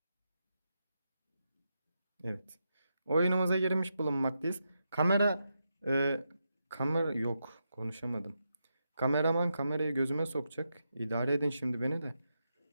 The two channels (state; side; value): inverted; both; correlation -0.85